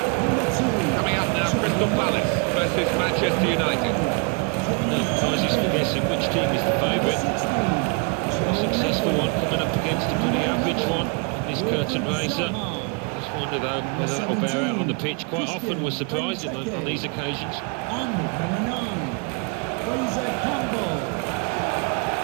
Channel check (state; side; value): quieter; left; 34.9 dB